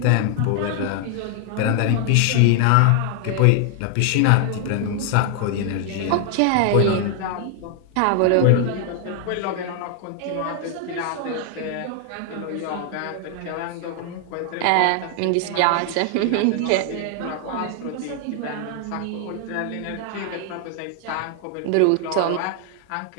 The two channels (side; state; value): both; different; correlation 0.00